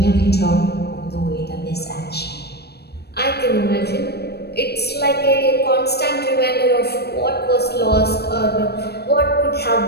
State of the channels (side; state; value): right; late; 0.47 ms